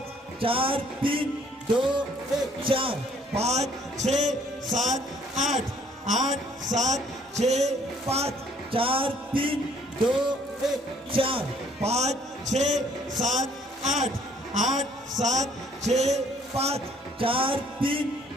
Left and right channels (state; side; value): normal; both; correlation 0.61